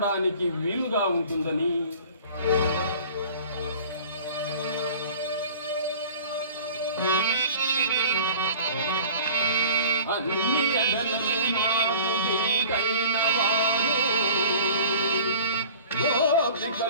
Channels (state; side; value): inverted; both; correlation -0.45